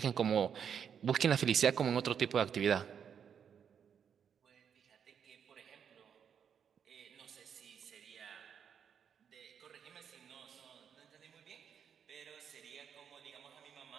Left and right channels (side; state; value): left; quieter; 7.7 dB